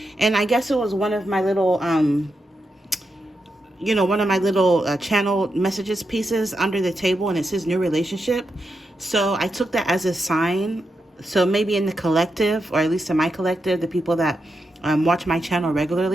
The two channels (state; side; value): normal; both; correlation 0.86